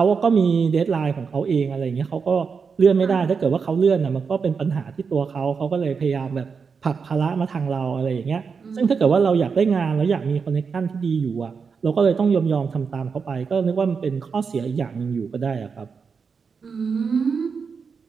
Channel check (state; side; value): quieter; left; 5.6 dB